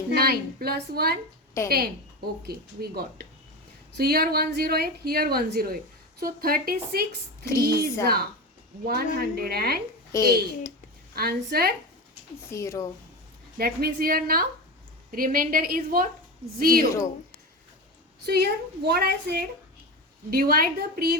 plus 1 10. 10. Okay, we got. So here 108, here 108. So 36 3s are 108. Answer. 0. That means here now remainder is what? 0. So here what I said, divide the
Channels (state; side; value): normal; both; correlation 0.22